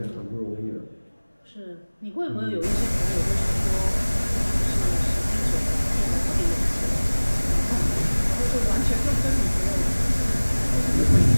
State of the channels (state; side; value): inverted; both; correlation -1.00